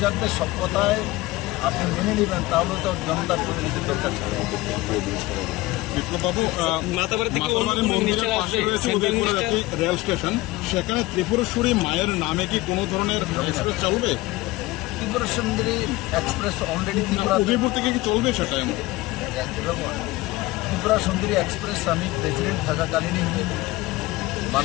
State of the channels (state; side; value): quieter; right; 19.7 dB